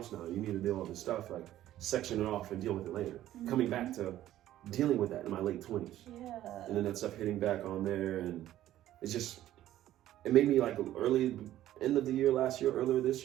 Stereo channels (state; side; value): quieter; left; 13.3 dB